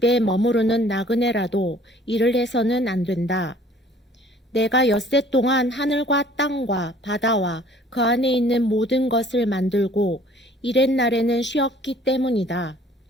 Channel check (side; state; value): both; normal; correlation 0.54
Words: 머무르는 나그네라도 일을 해서는 안 된다. 내가 엿새 동안 하늘과 땅과 바다와 그 안에 있는 모든 것을 만들고 이렛 날에는 쉬었기 때문이다.